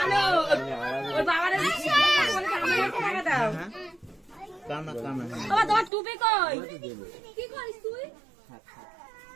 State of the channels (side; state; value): left; drops out; at 5.9 s